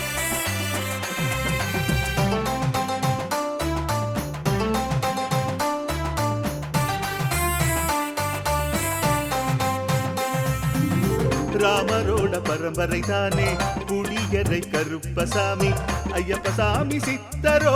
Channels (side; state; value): both; identical; correlation 1.00